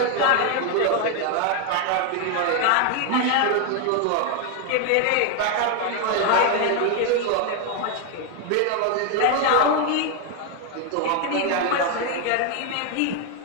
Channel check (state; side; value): different; both; correlation 0.01